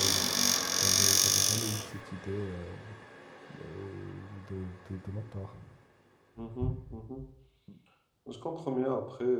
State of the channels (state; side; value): identical; both; correlation 1.00